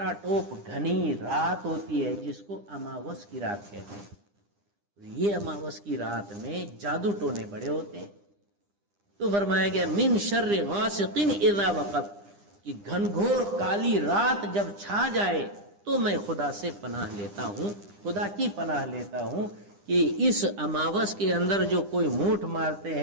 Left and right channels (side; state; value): left; late; 9.9 ms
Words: ٹوپ گھنی رات ہوتی ہے جس کو اماوس کی رات کہتے ہیں۔ یہ اماوس کی رات میں جادو ٹونے بڑے ہوتے ہیں۔ تو فرمایا گیا من شر غاسق اذا وقب، کہ گھنگھور کالی رات جب چھا جائے تو میں خدا سے پناہ لیتا ہوں، خدا کی پناہ لیتا ہوں کہ اس اماوس کے اندر جو کوئی موٹھ مارتے